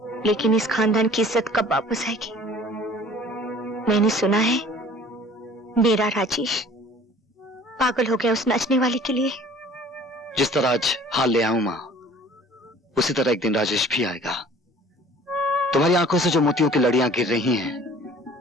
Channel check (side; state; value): both; normal; correlation 0.49